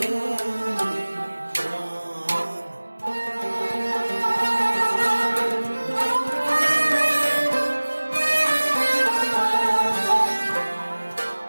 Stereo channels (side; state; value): both; inverted; correlation -1.00